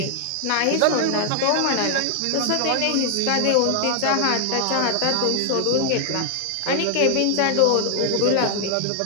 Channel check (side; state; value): both; different; correlation 0.00